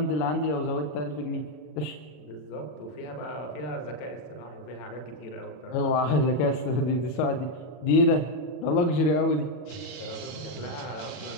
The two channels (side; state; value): right; late; 40 ms